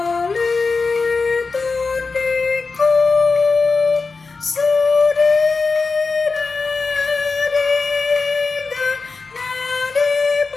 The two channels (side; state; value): right; quieter; 4.3 dB